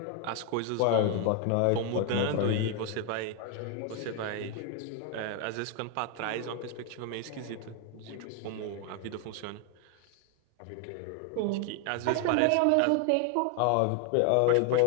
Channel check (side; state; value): both; different; correlation 0.00